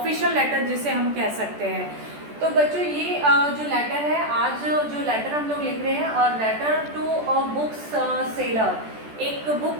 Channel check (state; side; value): late; left; 14 ms